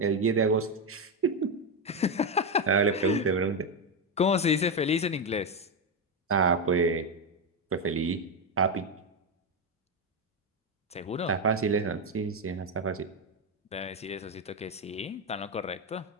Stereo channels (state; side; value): normal; both; correlation 0.08